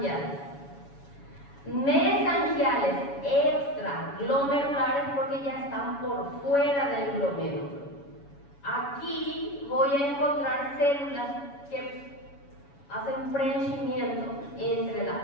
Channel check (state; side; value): late; right; 7.1 ms